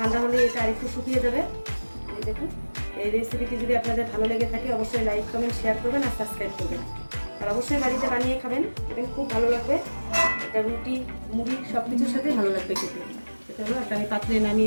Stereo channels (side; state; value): both; inverted; correlation -1.00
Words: হলে এটা আরেকটু শুকিয়ে যাবে। এই দেখুন, এই রেসিপিটি যদি আপনাদের ভালো লেগে থাকে অবশ্যই লাইক, কমেন্ট, শেয়ার করবেন আর সাবস্ক্রাইব করবেন। আর অবশ্যই বাড়িতে বানিয়ে খাবেন, দেখবেন খুব ভালো লাগবে। এটা রুটি, মুড়ি সব কিছুর সাথে ভালো লাগবে খেতে। এটা হলো একটা আমি পাত্রে